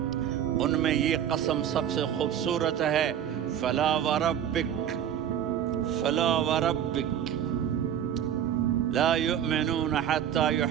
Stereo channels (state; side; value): quieter; left; 9.8 dB